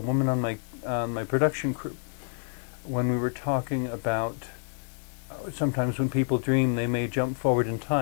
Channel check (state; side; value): silent; right; 59 dB below the other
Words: on my production crew when we were talking about sometimes when people dream, they may jump forward in